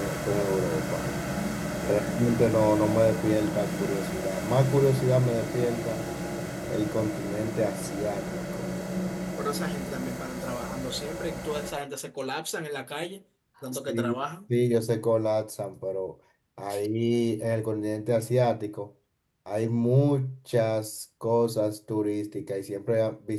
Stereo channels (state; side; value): identical; both; correlation 1.00